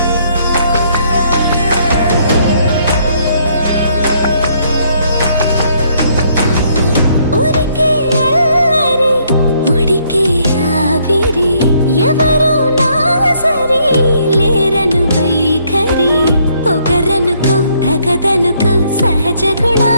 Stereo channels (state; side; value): inverted; both; correlation -0.68